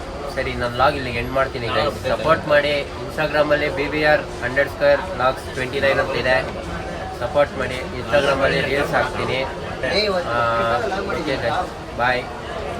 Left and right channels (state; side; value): identical; both; correlation 1.00